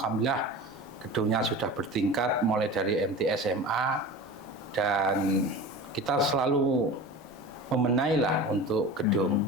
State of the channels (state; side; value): normal; both; correlation 0.34